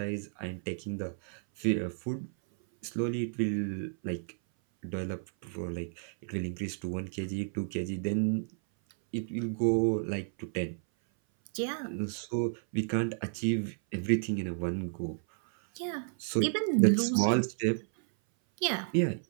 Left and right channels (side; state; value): left; silent; 56 dB below the other